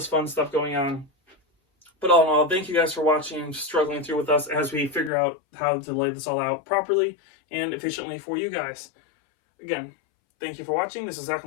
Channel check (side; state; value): right; drops out; at 5.1 s